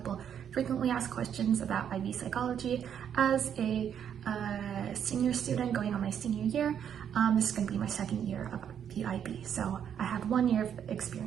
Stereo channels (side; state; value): left; quieter; 8.7 dB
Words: frequently asked questions about IB Psychology. As a senior student going on my senior year, this is going to be my second year of the IB, so I have 1 year of